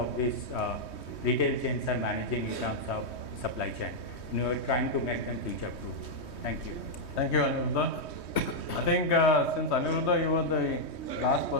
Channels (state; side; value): late; right; 3.2 ms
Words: this retail chains are managing in terms of supply chain. We are trying to make them future proof. Thank you. Thank you, Aniruddha. I think since Aniruddha, you were the last